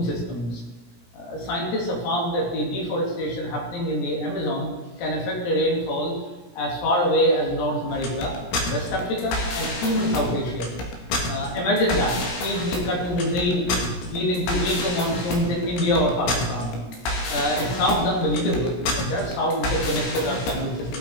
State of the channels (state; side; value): late; right; 17 ms